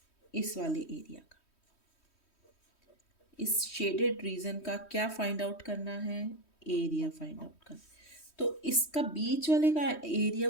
इस वाले एरिया का। इस शेडेड रीजन का क्या फाइंड आउट करना है? एरिया फाइंड आउट करना। तो इसका बीच वाले का एरिया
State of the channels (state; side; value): late; right; 3.1 ms